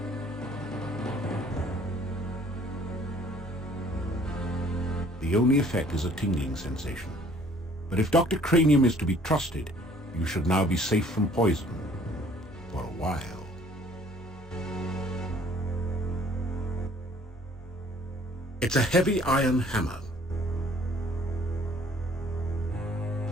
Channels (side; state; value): both; normal; correlation 0.57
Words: The only effect is a tingling sensation. But if Dr. Cranium is to be trusted, you should now be safe from poison. For a while. It's a heavy iron hammer.